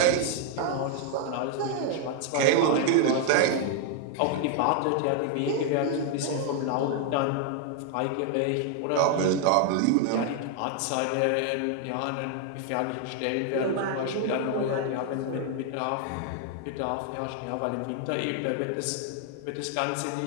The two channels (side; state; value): both; different; correlation 0.00